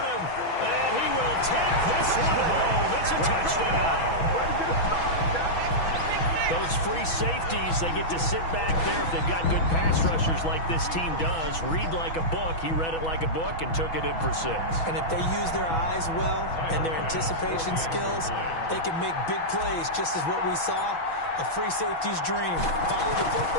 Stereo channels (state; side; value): late; right; 6.1 ms